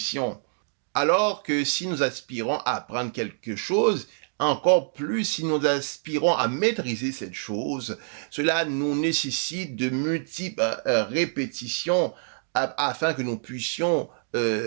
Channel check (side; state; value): left; silent; digital silence